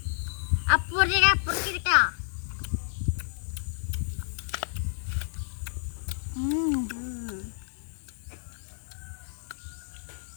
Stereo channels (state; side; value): silent; right; digital silence